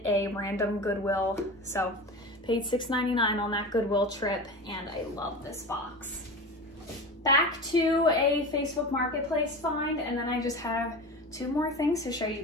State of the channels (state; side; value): normal; both; correlation 0.30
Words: a random Goodwill. So paid $6.99 on that Goodwill trip and I love this box. Back to a Facebook Marketplace find, and then I just have 2 more things to show you